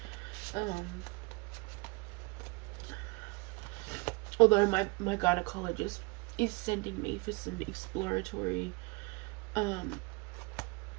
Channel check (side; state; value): left; quieter; 27.5 dB